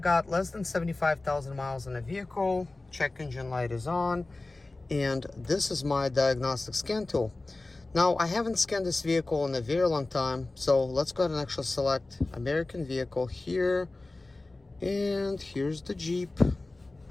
less than 75,000 miles in the vehicle. Check engine light is on, and this is my diagnostic scan tool. Now, I haven't scanned this vehicle in a very long time, so let's go ahead and actually select American vehicle here, and here's the Jeep.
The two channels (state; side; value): quieter; right; 3.1 dB